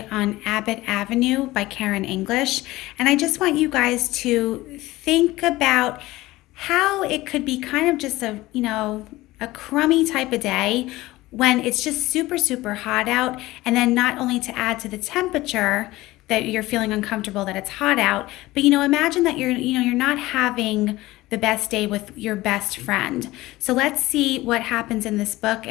on Abbott Avenue by Karen English. And I just want you guys to think about how it could be kind of just a crummy type of day when it's just super, super hot out. And then not only to add to the temperature that you're feeling uncomfortable that it's hot out, but imagine that you're not having the best day with your best friend. So let's see what happens in this book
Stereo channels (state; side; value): quieter; right; 18.3 dB